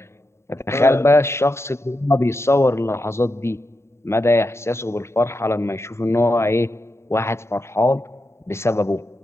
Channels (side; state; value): right; late; 0.13 ms